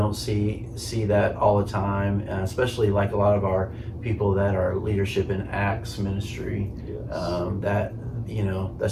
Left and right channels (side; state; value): both; identical; correlation 1.00